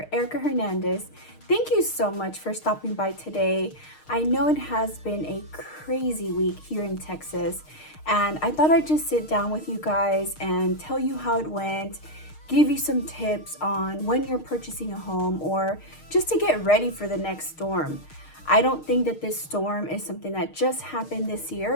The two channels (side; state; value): right; late; 6.5 ms